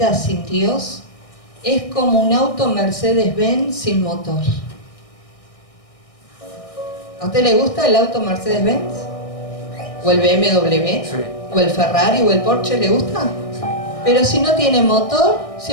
sin Dios, es como un auto Mercedes-Benz sin motor. ¿A usted le gusta el auto Mercedes-Benz? ¿O el BMW? Sí. ¿O el Ferrari o el Porsche le gusta? Sí. Pero si no tiene motor,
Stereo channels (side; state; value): right; late; 1.6 ms